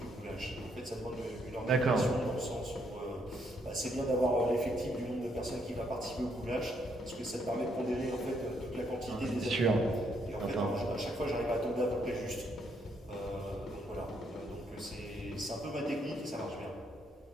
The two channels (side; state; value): both; normal; correlation 0.73